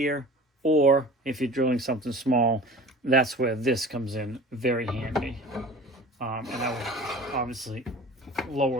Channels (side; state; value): both; normal; correlation 0.41